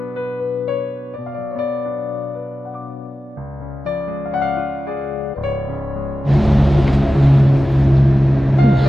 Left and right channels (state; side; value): normal; both; correlation 0.93